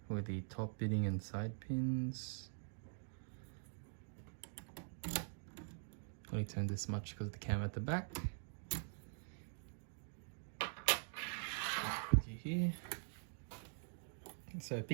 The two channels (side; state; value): left; silent; digital silence